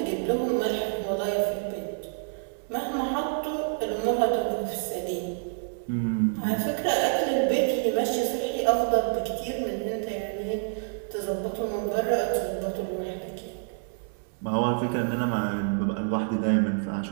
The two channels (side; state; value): left; silent; 60 dB below the other